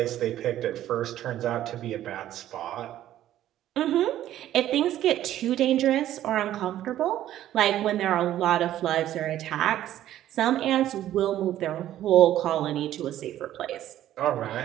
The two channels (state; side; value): quieter; left; 12.6 dB